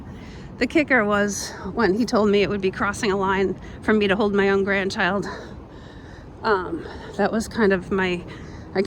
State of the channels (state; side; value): identical; both; correlation 1.00